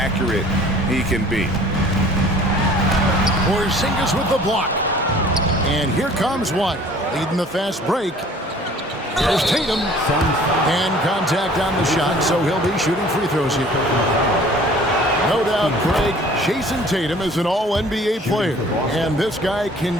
he can be. Porzingis with the block. And here comes one. Leading the fast break. Here's Tatum. And contact on the shot, so he'll be shooting free throws here. No doubt, Craig, Jason Tatum is an all-NBA player, and this guy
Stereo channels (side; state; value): both; normal; correlation 0.51